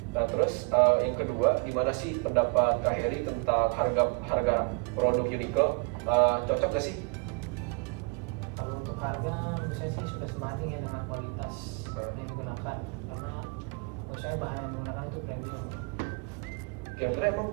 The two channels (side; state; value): left; quieter; 33.3 dB